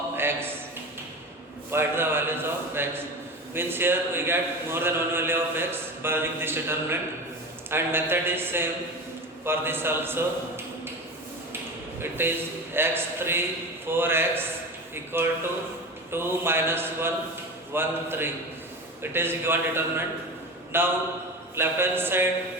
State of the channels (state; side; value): normal; both; correlation 0.29